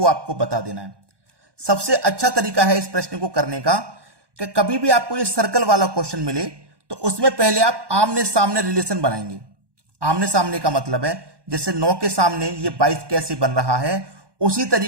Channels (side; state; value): left; late; 1.2 ms